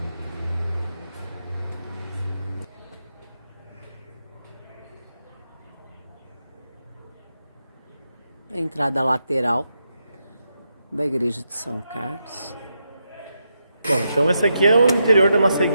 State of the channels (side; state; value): both; inverted; correlation -0.84